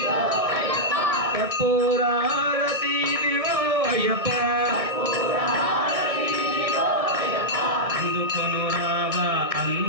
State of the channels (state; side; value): late; left; 1.6 ms